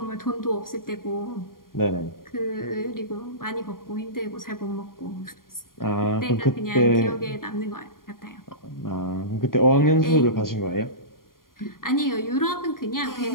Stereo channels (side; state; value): right; late; 0.91 ms